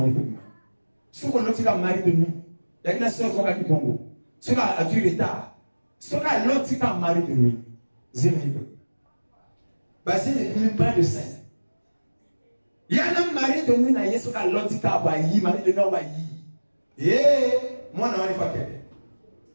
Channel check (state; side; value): inverted; both; correlation -1.00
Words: est bima. Ce qu'on l'autre kaka mari de nuit. Il y a une sœur qui a dit bongo. Ce qui a du retard. Ce qui l'autre kaka mari de nuit. Zéro. Basé n'est pas de saint. Il y a un mari de nuit na yeso ka l'autre kaka bayi mari de nuit bayi. Moi, je ne sais pas.